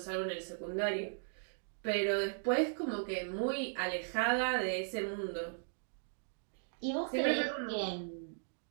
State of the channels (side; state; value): left; silent; digital silence